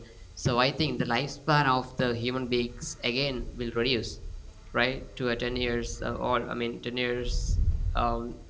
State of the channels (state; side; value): identical; both; correlation 1.00